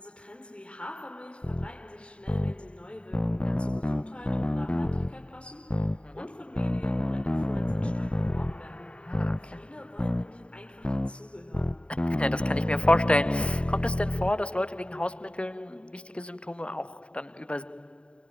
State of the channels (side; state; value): right; late; 0.056 ms